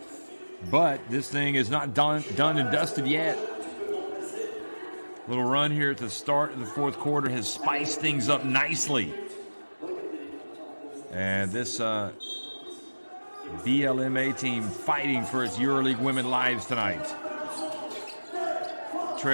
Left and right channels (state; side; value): inverted; both; correlation -1.00